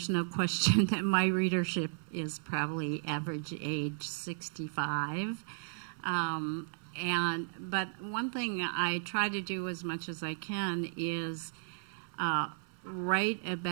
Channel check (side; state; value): left; silent; 55 dB below the other